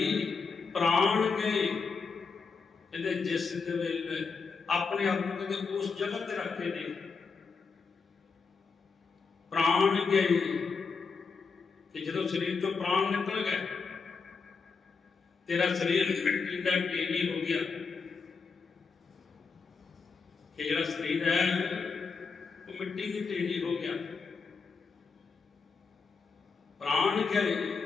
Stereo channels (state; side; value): quieter; right; 5.0 dB